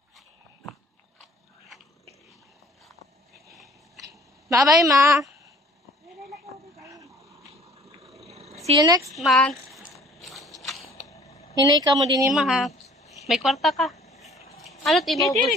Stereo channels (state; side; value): normal; both; correlation 0.53